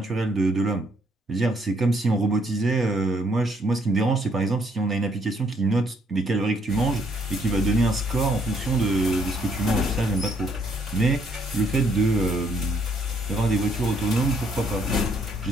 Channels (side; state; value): both; normal; correlation 0.69